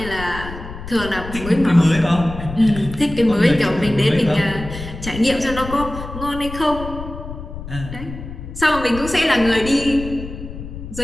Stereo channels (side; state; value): left; noise; rumble, 10 dB below the sound